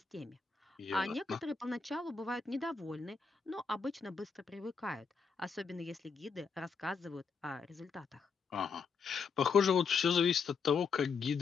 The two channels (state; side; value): quieter; right; 5.4 dB